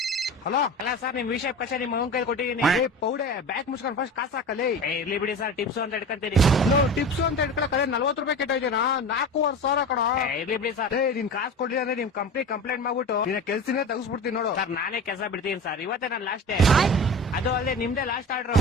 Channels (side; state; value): both; normal; correlation 0.32